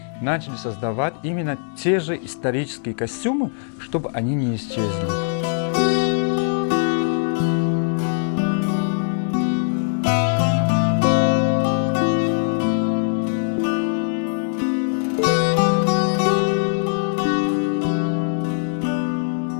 начали создавать именно те же исторические костюмы, чтобы они не исчезли.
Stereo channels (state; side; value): silent; right; 65 dB below the other